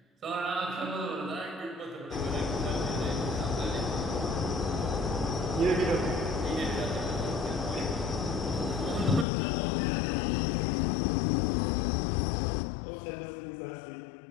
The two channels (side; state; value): right; drops out; at 9.2 s